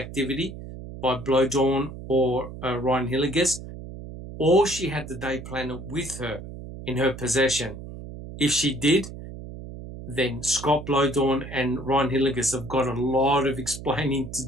by Blowdawn or Ryan Hilligus, or she had the day planner with her in her possession. If she did, then Scott Blowdawn and Ryan Hilligus have got a lot of explaining to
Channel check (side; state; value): right; noise; hum, 12 dB below the sound